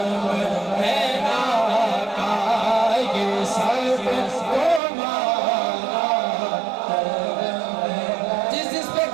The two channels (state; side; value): drops out; left; at 4.8 s